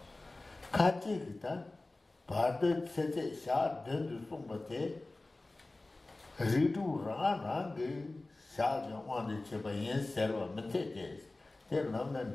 Kachita, Pardo c'était ça, de son maté, Ritu Rang, ça, on the Chibayan server, Metes, tel nom and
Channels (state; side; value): quieter; right; 3.0 dB